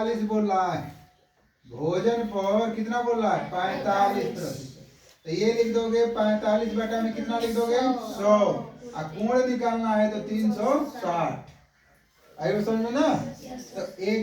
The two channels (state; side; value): identical; both; correlation 1.00